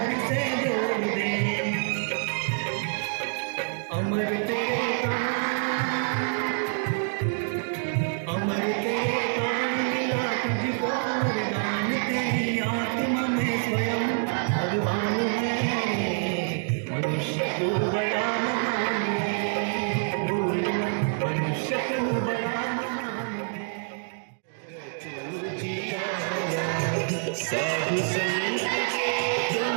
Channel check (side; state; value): left; silent; 59 dB below the other